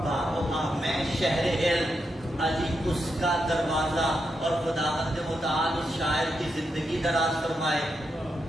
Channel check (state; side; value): normal; both; correlation 0.84